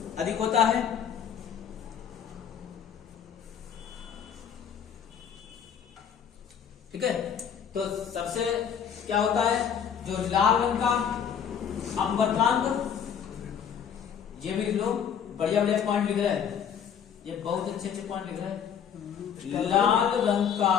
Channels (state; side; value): quieter; right; 8.1 dB